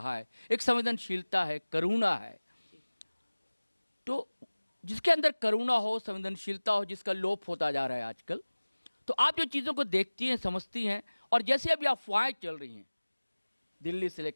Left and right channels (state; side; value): inverted; both; correlation -1.00